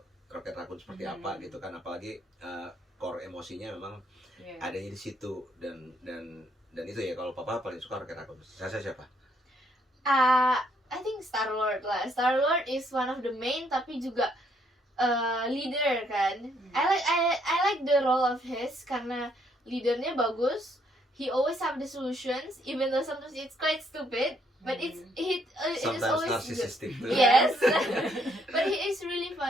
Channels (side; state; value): both; normal; correlation 0.70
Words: Rocket Raccoon seperti apa gitu kan. Apalagi core emosinya memang Iya. adanya di situ. Dan itu ya, kalau Papa paling suka Rocket Raccoon. Saya siapa? I think Star-Lord lah. Star-Lord is one of the main tapi juga leader kan. I like the role of his karena leadernya bagus. He always have the solutions even though sometimes it's quite stupid, but it is Sometimes always good. narcissistic too. Yes. But he is really